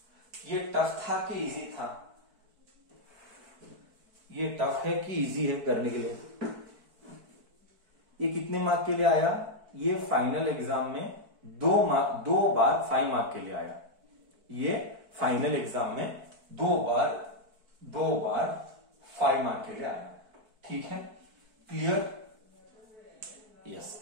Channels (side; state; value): left; late; 4.6 ms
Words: ये टफ था कि इजी था? ये टफ है कि इजी है करने के लिए? ये कितने मार्क के लिए आया? ये फाइनल एग्जाम में 2 बार 5 मार्क के लिए आया। ये फाइनल एग्जाम में 2 बार 5 मार्क के लिए आया। ठीक है, क्लियर? यस।